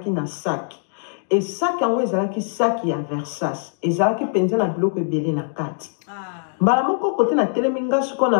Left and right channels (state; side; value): silent; right; digital silence